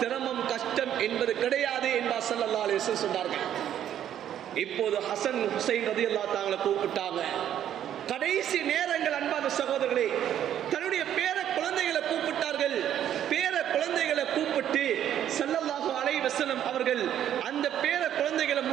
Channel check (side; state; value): left; quieter; 10.5 dB